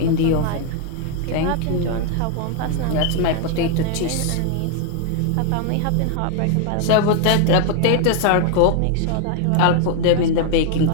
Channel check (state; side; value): different; both; correlation 0.00